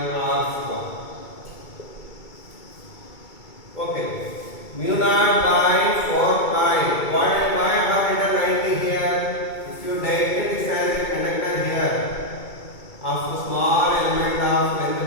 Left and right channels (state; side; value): late; right; 2.3 ms